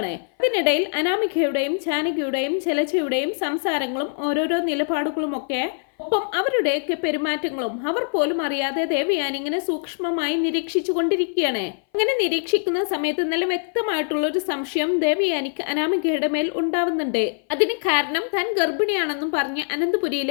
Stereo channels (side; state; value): right; silent; 59 dB below the other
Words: ഇതിനിടയിൽ അനാമികയുടെയും ജാനകിയുടെയും ജലജയുടെയും സംസാരങ്ങളും ഓരോരോ നിലപാടുകളുമൊക്കെ ഒപ്പം അവരുടെയൊക്കെ പെരുമാറ്റങ്ങളും അവർ പോലും അറിയാതെ ദേവയാനി ഇങ്ങനെ സൂക്ഷ്മമായി നിരീക്ഷിച്ചു കൊണ്ടിരിക്കുകയാണ്. അങ്ങനെ നിരീക്ഷിക്കുന്ന സമയത്ത് നല്ല വ്യക്തമായിട്ടുള്ള ഒരു സംശയം ദേവയാനിക്ക് അനാമികയുടെ മേൽ ഉണ്ടാവുന്നുണ്ട്. അതിന് കാരണം താൻ ഗർഭിണിയാണെന്നും പറഞ്ഞ്